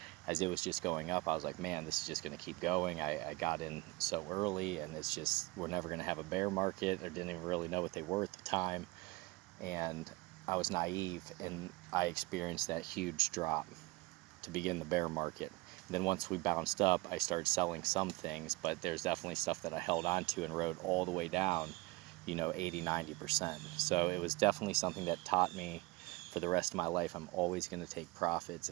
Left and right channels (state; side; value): quieter; left; 22.3 dB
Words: as it was just going up, I was like, man, this is just going to keep going. I got in so early, and it's just, we're never going to have a bear market. I didn't even really know what they were at the time. And I was naive, and I experienced that huge drop to begin the bear market. And then once we bounced up, I started selling some things, but there's definitely stuff that I held on to and rode all the way down, 80, 90%. So it was definitely something that taught me for the rest of my life, I'm always going to take profits,